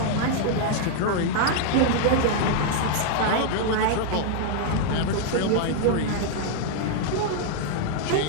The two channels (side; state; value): both; different; correlation -0.01